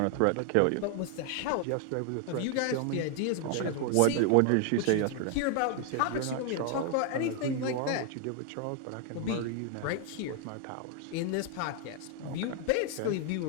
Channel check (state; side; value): different; both; correlation 0.00